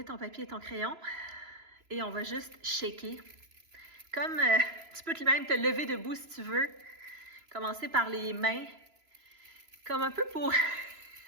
ton papier et ton crayon et on va juste shaker. Comme tu peux même te lever debout si tu veux. Commencez par les mains, comme un peu pour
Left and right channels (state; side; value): late; left; 3.0 ms